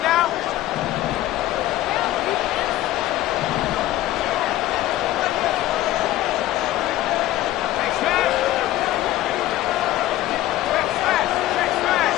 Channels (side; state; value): right; quieter; 14.8 dB